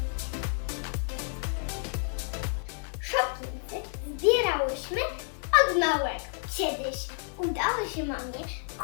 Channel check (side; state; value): right; silent; 56 dB below the other